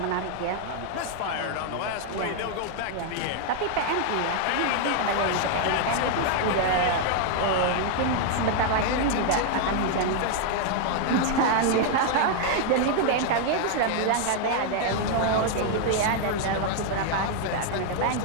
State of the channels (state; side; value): different; both; correlation 0.00